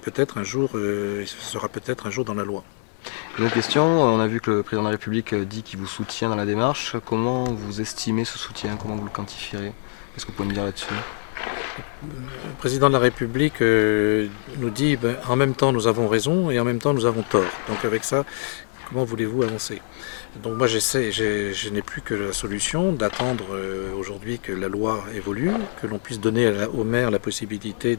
peut-être un jour, sera peut-être un jour dans la loi. Une autre question, on a vu que le président de la République dit qu'il vous soutient dans la démarche. Comment vous estimez ce soutien? Comment vous le quantifierez? Qu'est-ce que vous pouvez me dire là-dessus? Le président de la République nous dit en même temps nous avons raison et en même temps nous avons tort. Donc avec ça, comment voulez-vous avancer? Donc moi je n'ai plus que la solution d'attendre aujourd'hui que la loi évolue, que l'on puisse donner au maire la possibilité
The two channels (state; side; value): silent; right; digital silence